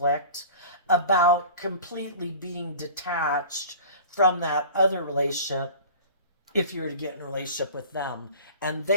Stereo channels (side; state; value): both; inverted; correlation -0.40